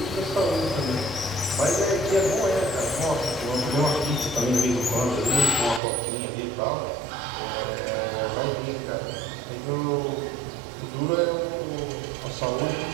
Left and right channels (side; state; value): left; drops out; at 5.8 s